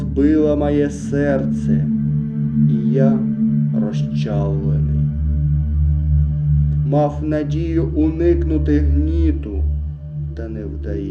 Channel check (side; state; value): both; identical; correlation 1.00